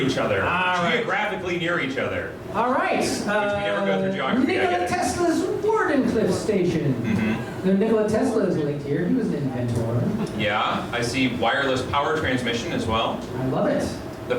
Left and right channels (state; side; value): identical; both; correlation 1.00